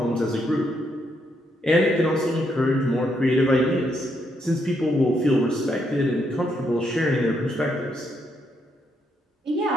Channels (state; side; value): normal; both; correlation 0.77